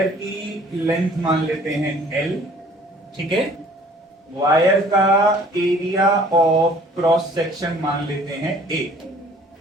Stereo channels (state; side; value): normal; both; correlation 0.54